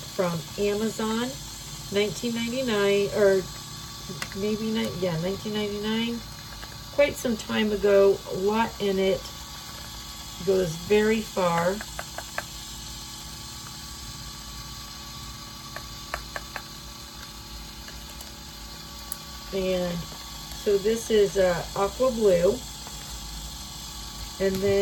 from Amazon, $19.99, or maybe not, yeah, $19.99, quite some time ago. A lot in it, goes very far. And so this is aqua blue, and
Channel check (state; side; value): identical; both; correlation 1.00